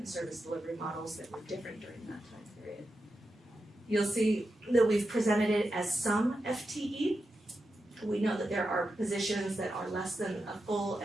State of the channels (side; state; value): both; normal; correlation 0.89